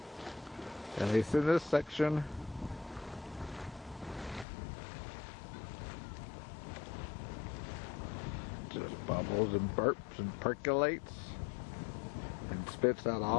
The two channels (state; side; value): drops out; right; at 4.5 s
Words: at least in this section. Just bubbles and burps and percolates and spits out